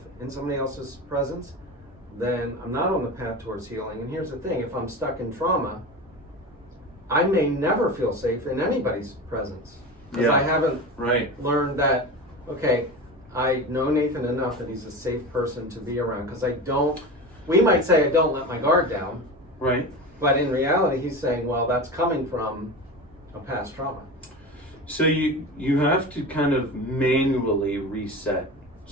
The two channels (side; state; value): both; normal; correlation 0.28